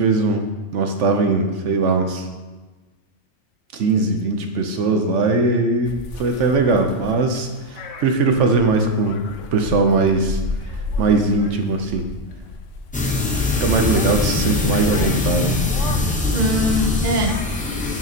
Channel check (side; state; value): both; normal; correlation 0.07